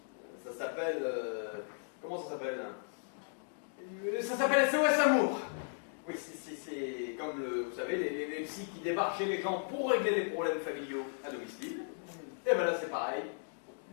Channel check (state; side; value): silent; right; digital silence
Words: Ça s'appelle... comment ça s'appelle? Ça s'appelle SOS Amour. Oui, c'est comme, vous savez, les psys qui débarquent chez les gens pour régler les problèmes familiaux à domicile. Et ben là, c'est pareil.